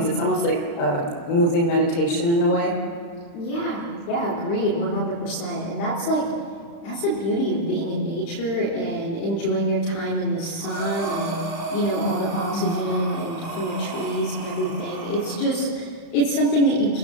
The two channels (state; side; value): late; right; 35 ms